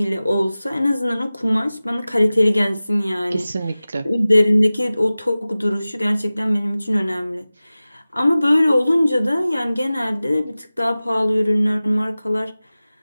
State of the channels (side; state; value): both; inverted; correlation -0.97